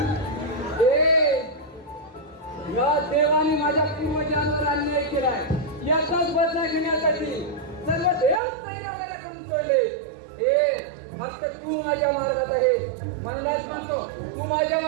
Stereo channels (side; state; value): left; drops out; at 8.4 s